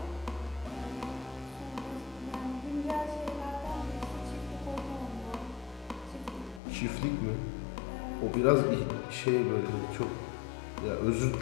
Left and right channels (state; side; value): drops out; right; at 6.6 s